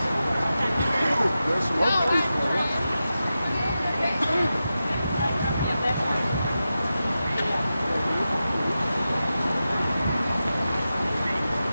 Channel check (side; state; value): both; inverted; correlation -0.92